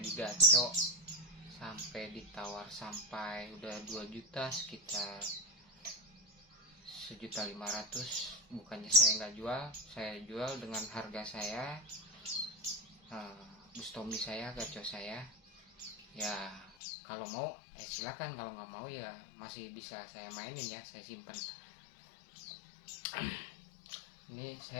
gaco, sampai ditawar sampai udah 2 juta, sekitar 1.500.000. Bukannya saya nggak jual, saya jual dengan harga saya, Bustomi saya, gaco saya ya. Kalau mau silakan, kalau nggak mau ya masih bisa saya mainin ya, saya simpan. Ini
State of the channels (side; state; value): right; drops out; at 16.7 s